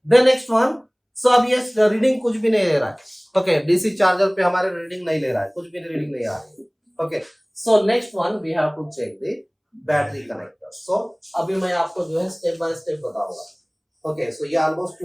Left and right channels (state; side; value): identical; both; correlation 1.00